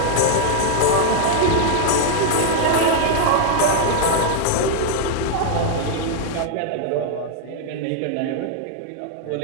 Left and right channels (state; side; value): different; both; correlation 0.00